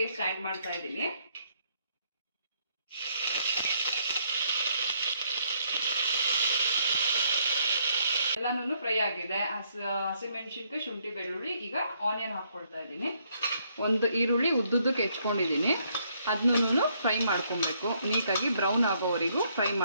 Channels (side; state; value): both; inverted; correlation -0.71